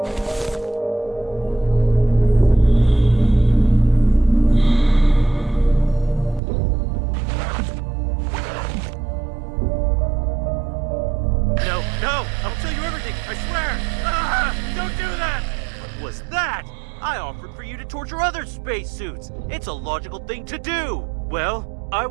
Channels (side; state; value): left; drops out; at 6.4 s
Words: Spacesuits. It's a logical thing to do. Well, I